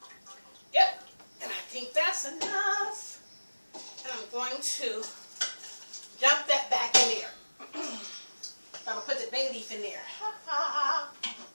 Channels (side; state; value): both; inverted; correlation -1.00